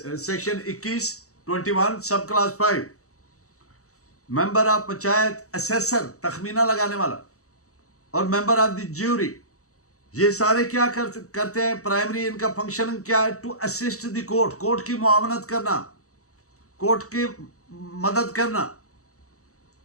21 sub class 5। Member of panchayat, assessor, तखमीना लगाने वाला, और मेंबर ऑफ द ज्यूरी, ये सारे क्या करते हैं? प्राइमरी इनका फंक्शन क्या है? To assist the court, court की मुआवनत करना, कोर्ट की मदद करना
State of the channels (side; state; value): right; late; 0.65 ms